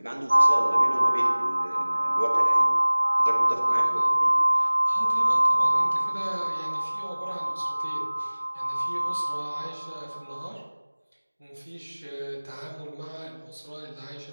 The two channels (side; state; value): both; inverted; correlation -1.00